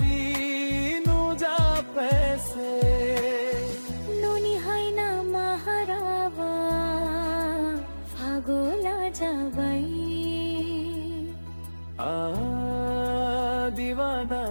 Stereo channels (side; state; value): both; inverted; correlation -1.00